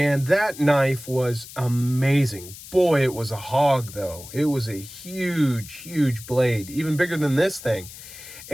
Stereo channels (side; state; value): left; noise; hiss, 15 dB below the sound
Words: that knife was amazing. Boy, it was a hog, though. It was a huge, huge blade, even bigger than this thing.